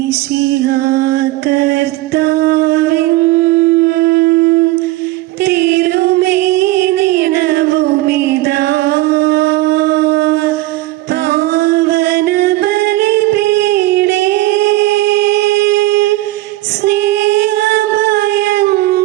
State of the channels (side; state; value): left; quieter; 18.3 dB